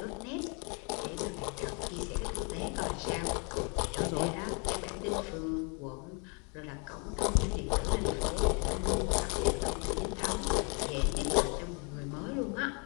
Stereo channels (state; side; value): quieter; right; 35.4 dB